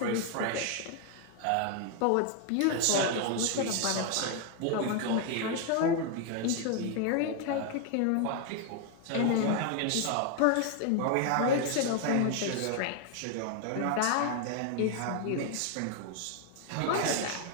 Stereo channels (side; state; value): both; different; correlation 0.00